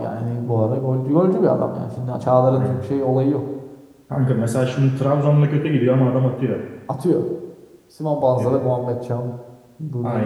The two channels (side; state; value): both; identical; correlation 1.00